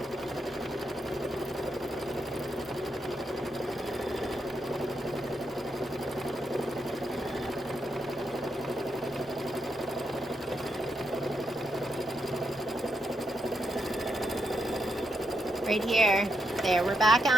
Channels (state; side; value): normal; both; correlation 0.81